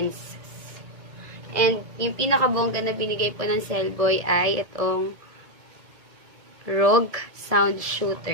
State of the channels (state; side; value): late; left; 1.7 ms